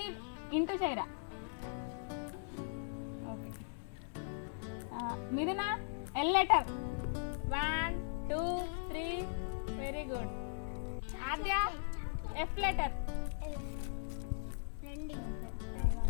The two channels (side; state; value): right; silent; digital silence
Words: ఇంటూ చేయరా. Okay. Mithuna L letter 1 2 3. Very good. Aadya F letter.